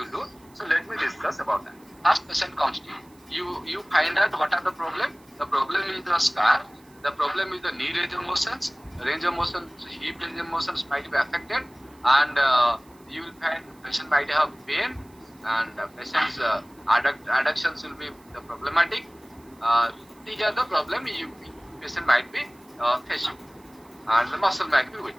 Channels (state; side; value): noise; right; hiss, 29 dB below the sound